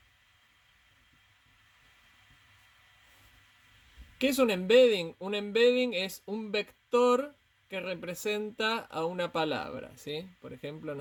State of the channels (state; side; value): identical; both; correlation 1.00